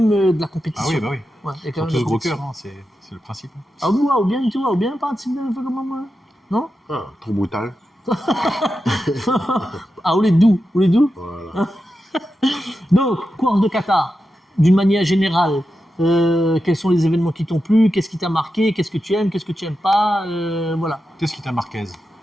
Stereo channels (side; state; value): both; normal; correlation 0.90